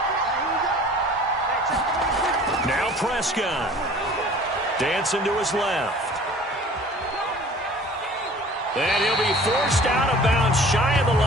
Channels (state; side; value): normal; both; correlation 0.47